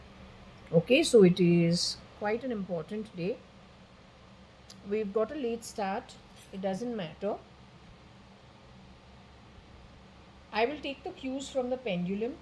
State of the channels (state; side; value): identical; both; correlation 1.00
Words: Okay, so it is quite an important day. We've got a late start. It doesn't matter. I will take the cues from the pendulum